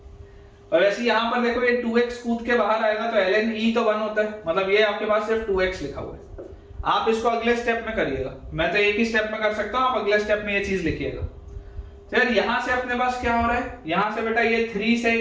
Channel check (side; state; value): both; identical; correlation 1.00